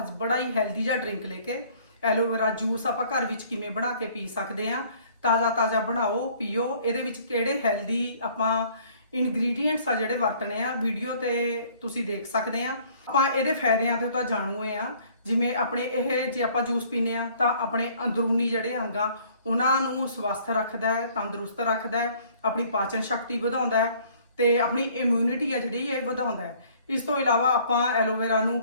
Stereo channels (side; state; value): both; inverted; correlation -0.57